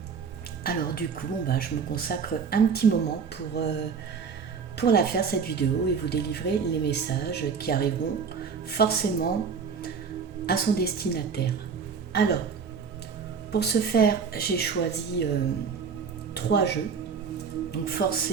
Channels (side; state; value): left; quieter; 6.0 dB